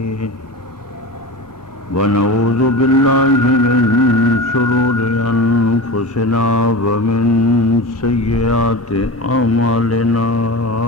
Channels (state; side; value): normal; both; correlation 0.29